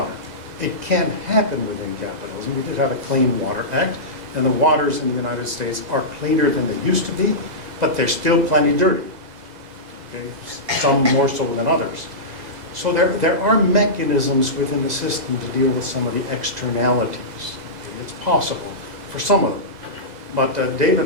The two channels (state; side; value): late; left; 2.0 ms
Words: It can happen within capitalism. We did have a Clean Water Act, and the waters in the United States are cleaner than they used to be, but they're still plenty dirty. Okay? Some more so than others. So there are mechanisms within the system to deal with some of the externalities. Okay? It's possible for some of them. But David